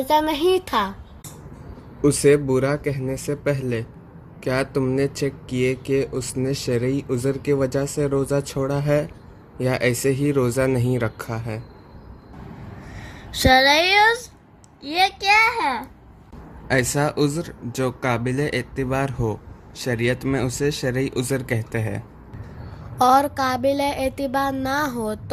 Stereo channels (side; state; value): both; identical; correlation 1.00